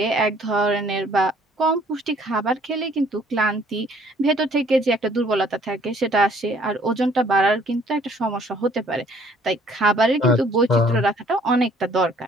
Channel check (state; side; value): normal; both; correlation 0.59